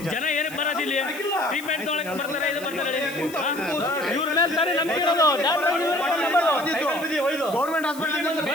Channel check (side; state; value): left; noise; hiss, 16 dB below the sound